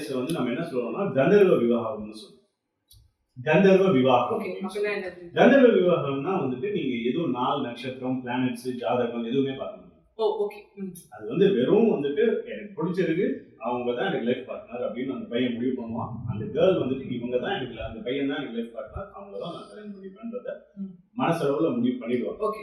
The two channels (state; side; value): identical; both; correlation 1.00